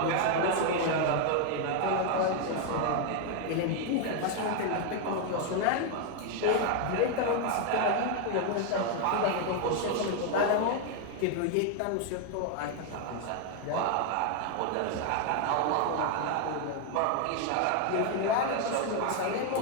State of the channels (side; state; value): both; different; correlation 0.01